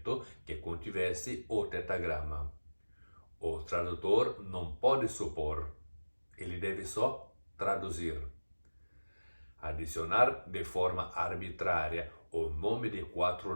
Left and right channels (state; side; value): inverted; both; correlation -1.00